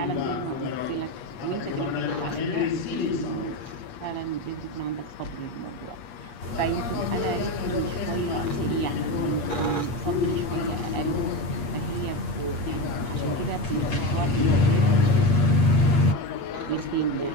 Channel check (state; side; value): late; right; 8.4 ms